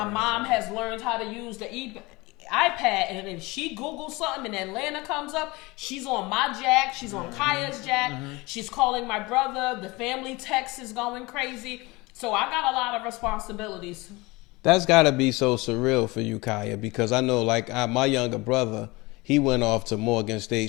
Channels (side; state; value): right; quieter; 23.3 dB